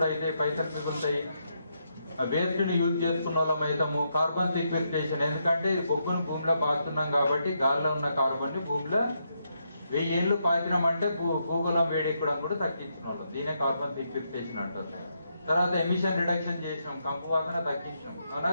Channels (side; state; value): both; inverted; correlation -0.80